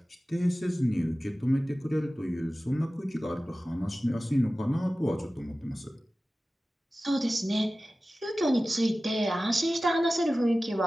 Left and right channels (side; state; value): both; normal; correlation 0.96